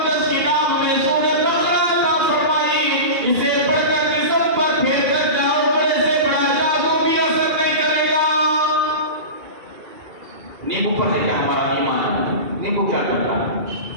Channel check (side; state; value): left; late; 2.3 ms